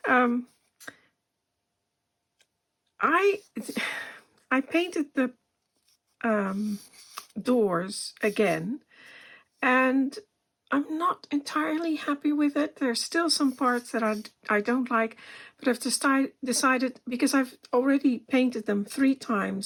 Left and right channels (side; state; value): both; identical; correlation 1.00